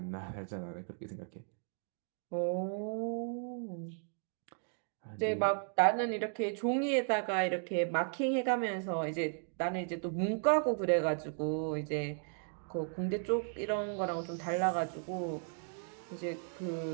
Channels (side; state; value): left; silent; 54 dB below the other